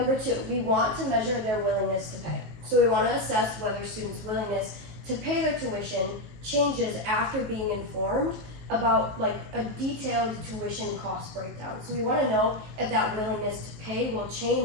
two, we want to measure their willingness to pay. So we want to assess whether students' willingness to pay their tuition changes after being informed about like a detailed tuition cost breakdown. So we want to know if that willingness to pay will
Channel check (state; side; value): late; left; 19 ms